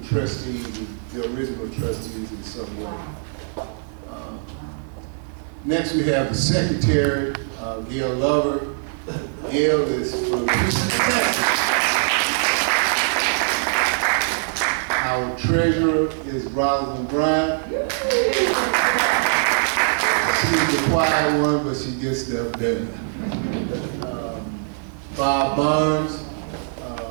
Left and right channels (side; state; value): left; silent; digital silence